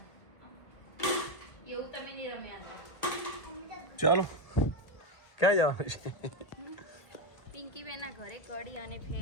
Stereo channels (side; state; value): right; late; 1.7 ms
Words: એવું તમે નહીં રમ્યા. ચાલો ક્યાં જવાનું છે? પિંકી બેના ઘરે કડી અને